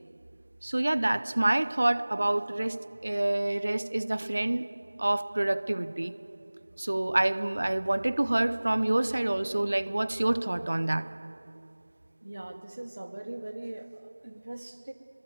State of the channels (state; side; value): inverted; both; correlation -1.00